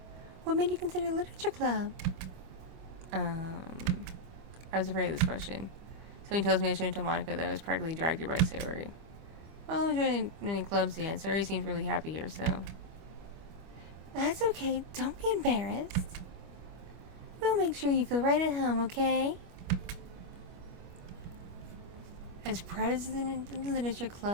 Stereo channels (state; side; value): late; left; 25 ms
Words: what made you consider literature club? I was afraid of this question. Something tells me I shouldn't tell Monica that I was practically dragged here by Sayori. Well, I'm joining many clubs yet. Sayori seems really happy here, so... That's okay. Don't be embarrassed. We'll make sure you feel right at home, okay? As president of the literature